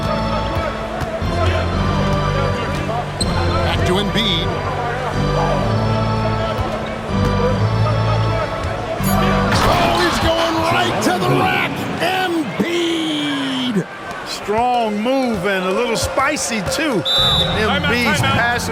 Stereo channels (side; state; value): both; identical; correlation 1.00